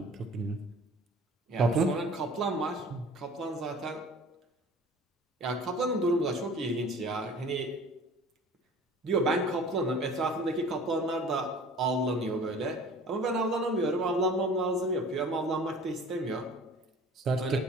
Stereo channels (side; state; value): both; normal; correlation 0.45